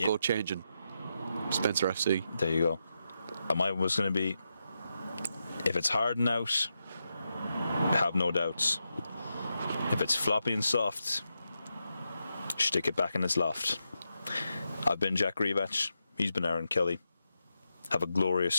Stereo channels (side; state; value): both; inverted; correlation -0.86